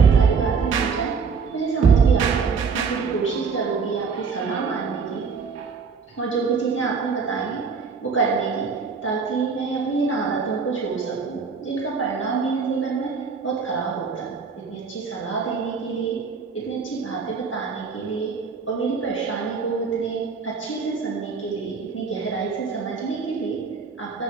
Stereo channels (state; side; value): quieter; left; 5.3 dB